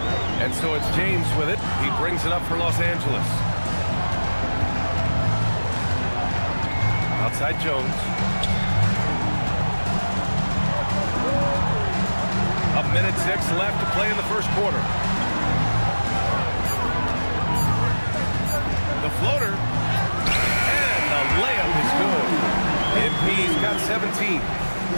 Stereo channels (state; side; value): inverted; both; correlation -1.00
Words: And so it's James with it. He brings it up for Los Angeles. Outside Jones. A minute 6 left to play in the first quarter. The floater. And the layup is good. MP's got 17.